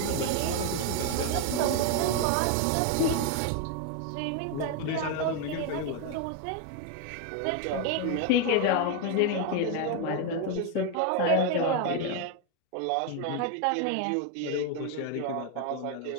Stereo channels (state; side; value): different; both; correlation 0.01